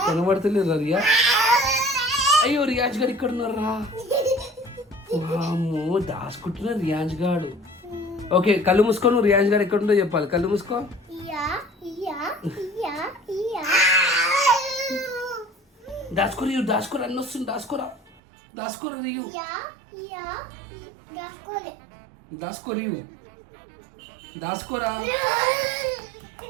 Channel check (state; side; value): drops out; left; at 18.1 s